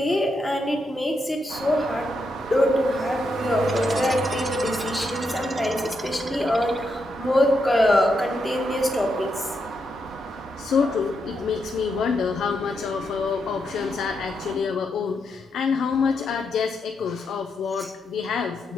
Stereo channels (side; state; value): both; normal; correlation 0.82